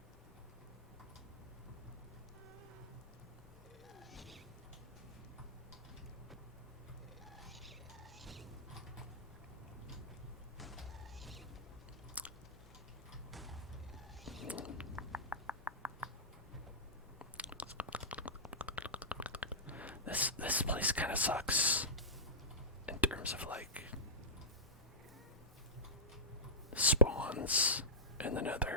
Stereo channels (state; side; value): normal; both; correlation -0.13